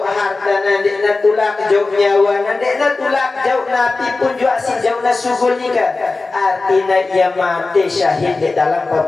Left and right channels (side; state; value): right; quieter; 3.6 dB